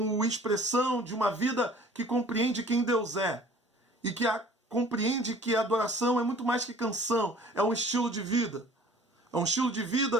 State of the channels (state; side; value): normal; both; correlation 0.50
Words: expressão de uma vida que compreende quem Deus é e que compreende que a adoração é muito mais que canção, é um estilo de vida. É um estilo de